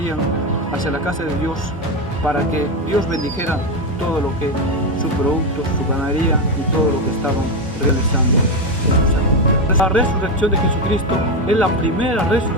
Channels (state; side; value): normal; both; correlation 0.11